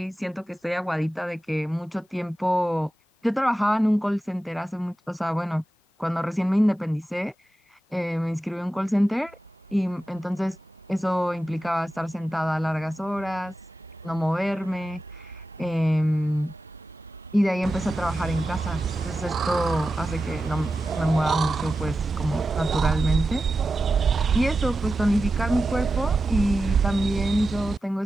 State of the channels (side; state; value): both; normal; correlation 0.92